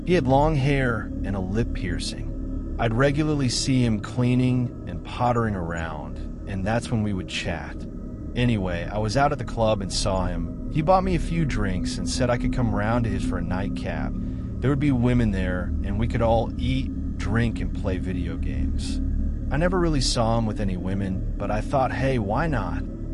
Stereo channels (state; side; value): identical; both; correlation 1.00